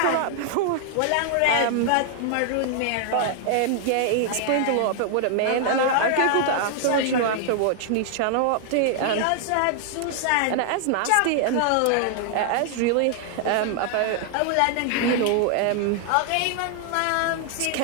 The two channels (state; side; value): different; both; correlation 0.00